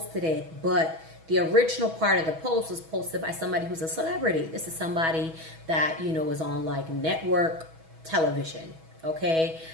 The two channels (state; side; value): late; left; 6.2 ms